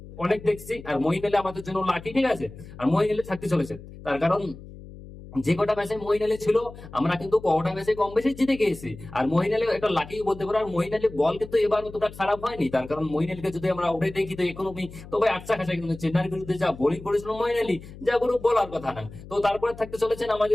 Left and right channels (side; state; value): left; noise; hum, 16 dB below the sound